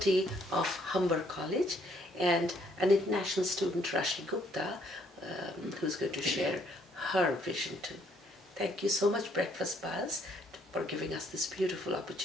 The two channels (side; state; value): both; normal; correlation 0.67